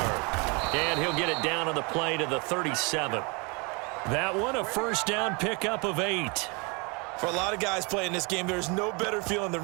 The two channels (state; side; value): quieter; left; 30.4 dB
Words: And he'll get it down on the play to the 37. That one a first down pickup of 8. For a lot of guys playing this game, there's no better feeling than